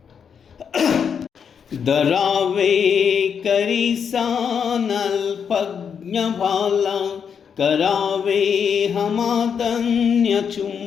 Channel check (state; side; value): quieter; right; 7.1 dB